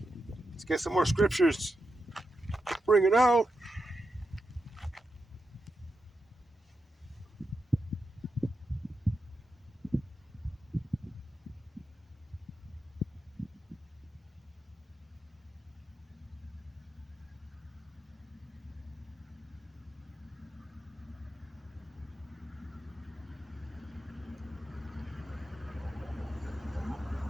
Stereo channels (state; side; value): normal; both; correlation 0.87